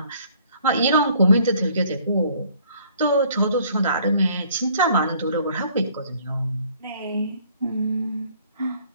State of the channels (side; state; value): both; inverted; correlation -0.59